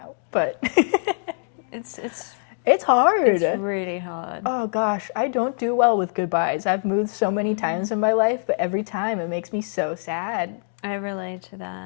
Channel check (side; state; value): right; silent; digital silence